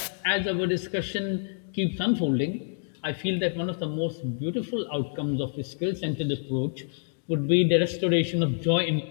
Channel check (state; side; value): silent; right; digital silence